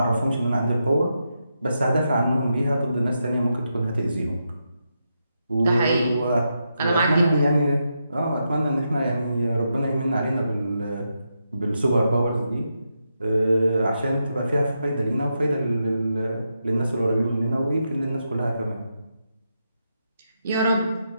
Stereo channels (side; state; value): both; inverted; correlation -0.85